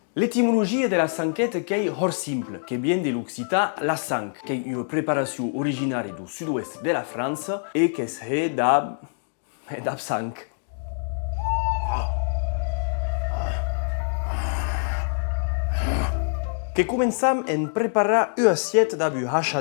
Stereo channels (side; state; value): right; silent; digital silence